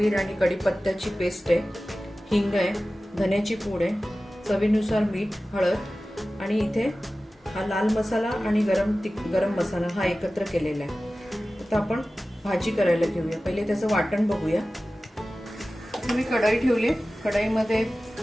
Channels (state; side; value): normal; both; correlation 0.96